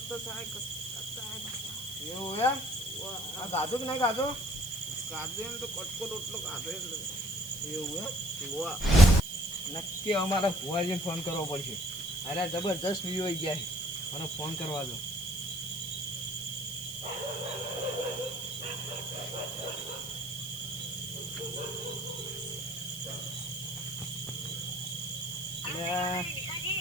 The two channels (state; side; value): noise; right; hiss, 11 dB below the sound